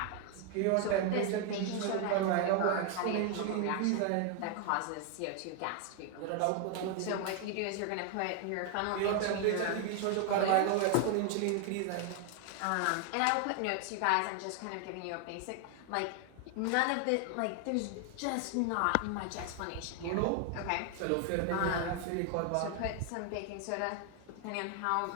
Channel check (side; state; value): both; different; correlation 0.00